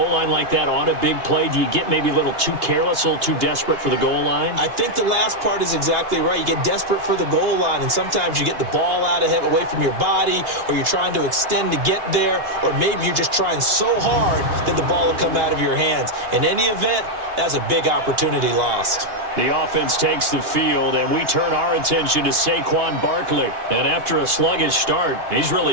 line like that on a big play, do you get maybe a little too careless, a little too desperate for the goal line? I think the last part is exactly right. You get desperate for the goal line, and sometimes you get the ball out of it, away from your body, or you're trying to extend to get there, or maybe you're just trying so hard that the ball will come out of your hands. In any event, that's a big opportunity lost. The offense takes the field, and we turn our attention to Saquon Barkley. And after a sluggish start, he's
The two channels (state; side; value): late; left; 2.8 ms